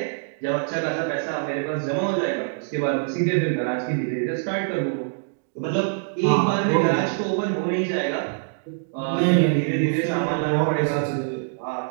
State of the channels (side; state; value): left; silent; digital silence